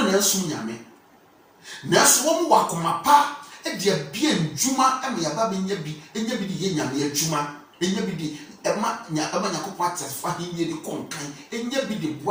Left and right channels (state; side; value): identical; both; correlation 1.00